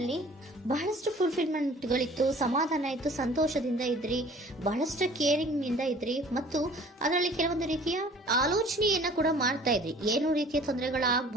ಬಹಳಷ್ಟು ಫುಲ್ಫಿಲ್ಮೆಂಟ್ ಗಳಿತ್ತು, ಸಮಾಧಾನ ಇತ್ತು, ಸಂತೋಷದಿಂದ ಇದ್ರಿ, ಬಹಳಷ್ಟು ಕೇರಿಂಗ್ ನಿಂದ ಇದ್ರಿ ಮತ್ತು ಅದರಲ್ಲಿ ಕೆಲವೊಂದು ರೀತಿಯ ಆಲೋಚನೆಯನ್ನ ಕೂಡ ಮಾಡ್ತಾ ಇದ್ರಿ. ಏನು ರೀತಿಯ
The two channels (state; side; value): normal; both; correlation 0.50